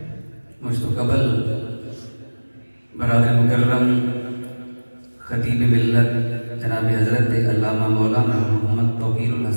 مجھ تو قبل برادر مکرم خطیب ملت جناب حضرت علامہ مولانا محمد توقیر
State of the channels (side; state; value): both; inverted; correlation -1.00